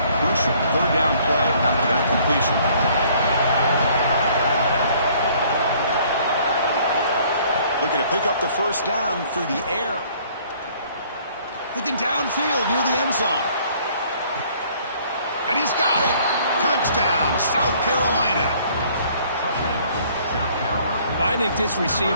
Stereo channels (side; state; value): both; inverted; correlation -0.59